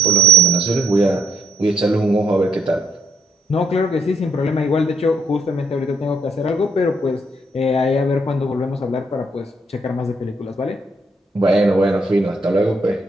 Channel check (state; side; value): normal; both; correlation 0.70